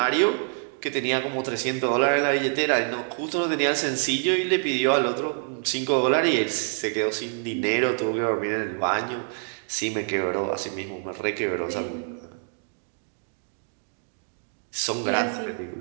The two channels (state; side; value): silent; left; 61 dB below the other